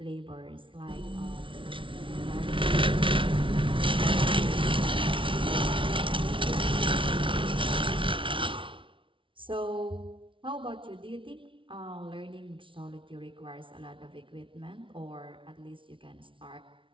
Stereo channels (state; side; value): late; left; 0.25 ms